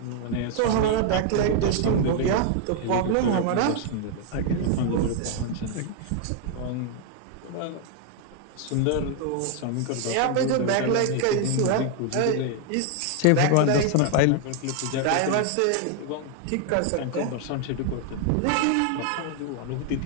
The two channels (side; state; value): both; different; correlation 0.00